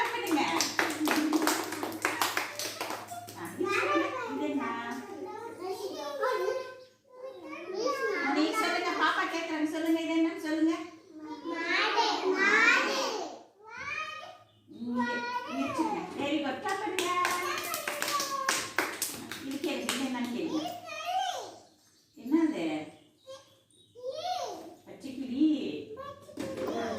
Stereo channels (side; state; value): both; identical; correlation 1.00